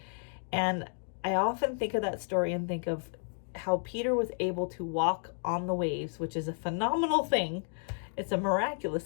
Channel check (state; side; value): silent; right; 57 dB below the other